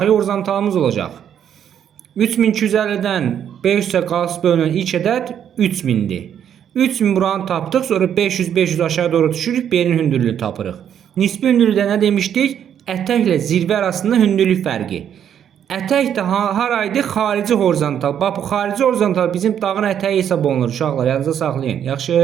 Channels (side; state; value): left; quieter; 9.2 dB